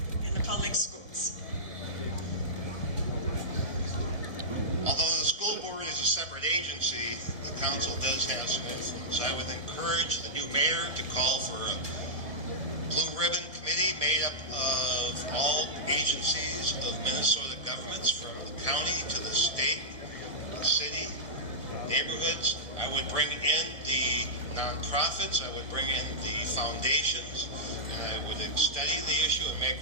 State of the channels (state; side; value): late; left; 1.1 ms